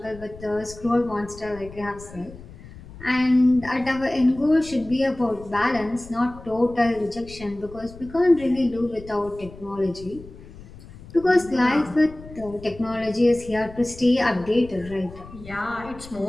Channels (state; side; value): noise; left; rumble, 17 dB below the sound